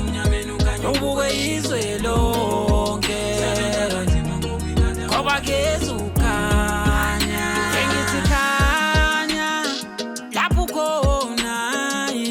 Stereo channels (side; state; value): both; identical; correlation 1.00